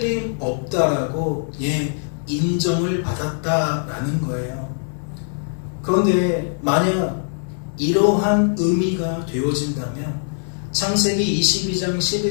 인정을 받았다라는 거예요. 그런데 만약 이러한 의미가 되어진다면 창세기 22장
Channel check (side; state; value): right; silent; digital silence